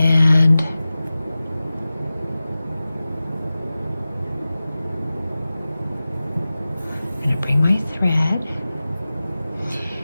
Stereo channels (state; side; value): inverted; both; correlation -0.96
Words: I'm going to bring my thread,